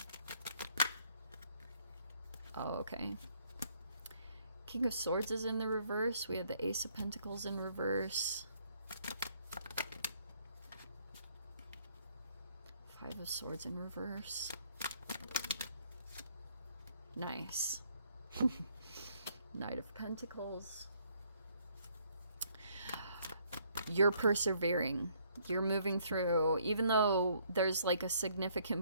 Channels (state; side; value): inverted; both; correlation -0.66